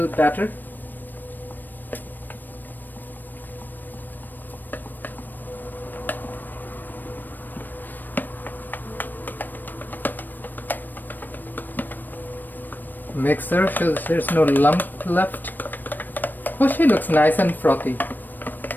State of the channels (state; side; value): late; right; 0.091 ms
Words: batter. mixer so there's no lump left. Oh, she looks nice and frothy.